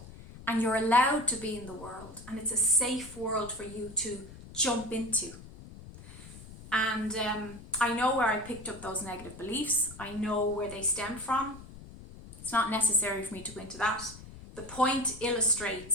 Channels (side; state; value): left; noise; rumble, 16 dB below the sound